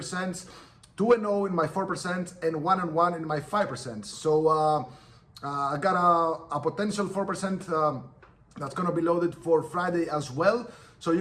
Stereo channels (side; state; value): both; identical; correlation 1.00